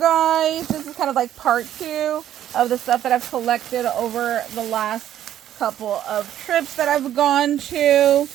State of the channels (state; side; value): quieter; left; 11.4 dB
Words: This is kind of like part 2 of the stuff that I've collected over the last couple of trips that I've gone to.